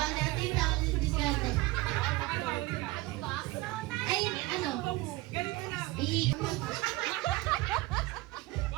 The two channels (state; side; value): quieter; left; 19.9 dB